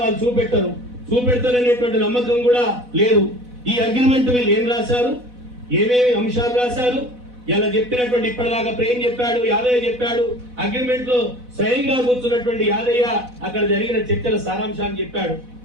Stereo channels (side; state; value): left; late; 4.1 ms